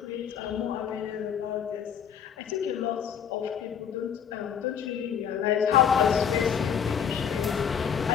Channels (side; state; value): right; quieter; 8.0 dB